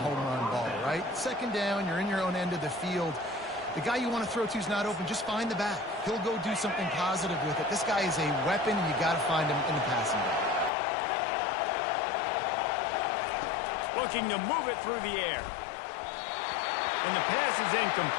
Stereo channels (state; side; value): drops out; right; at 10.7 s